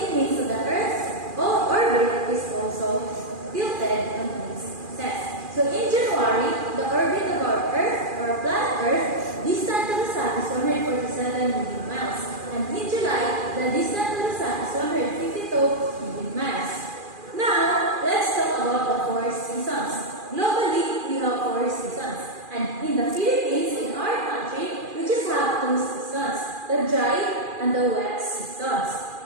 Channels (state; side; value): late; left; 2.4 ms